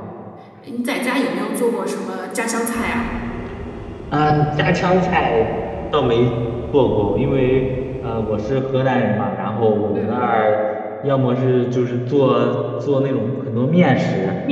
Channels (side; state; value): both; identical; correlation 1.00